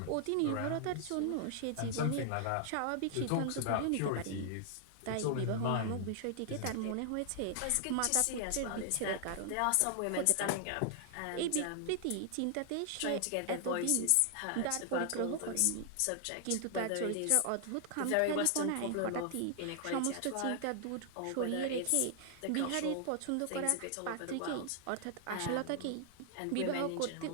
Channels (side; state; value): both; different; correlation 0.00